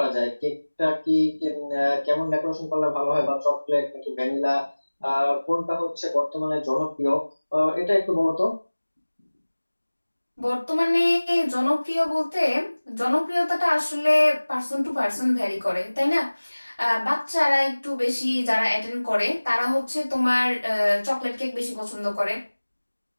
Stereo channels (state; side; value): inverted; both; correlation -1.00